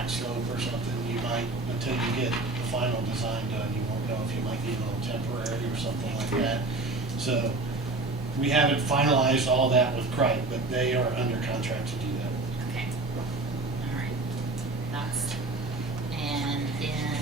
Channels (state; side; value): quieter; left; 3.1 dB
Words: slope or something, you might, until you get the final design done, you won't know if you might need a little temporary or something like that. So, we haven't finalized all that with Cripe, but they are under contract to do that. okay, all right, and then,